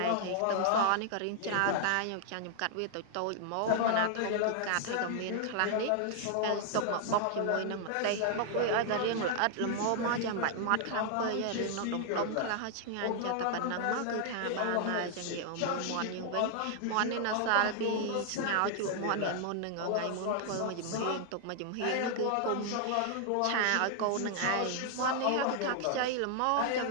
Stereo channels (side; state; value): both; different; correlation 0.00